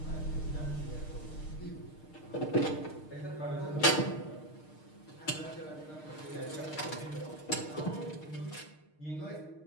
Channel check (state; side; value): late; right; 6.5 ms